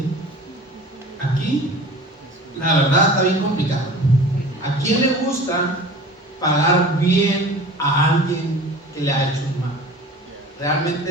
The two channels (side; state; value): both; normal; correlation 0.40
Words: Aquí, la verdad, está bien complicado. ¿A quién le gusta pagar bien a alguien que le ha hecho un mal?